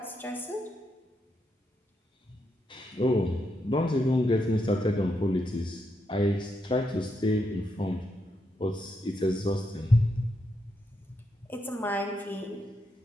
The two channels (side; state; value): both; normal; correlation 0.81